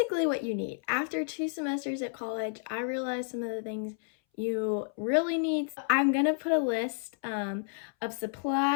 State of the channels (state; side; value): silent; right; 57 dB below the other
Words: what you need. After 2 semesters at college, I realized some of the things you really need. I'm going to put a list of